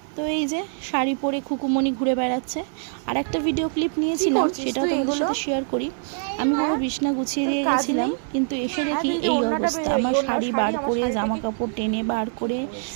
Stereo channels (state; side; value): silent; left; 63 dB below the other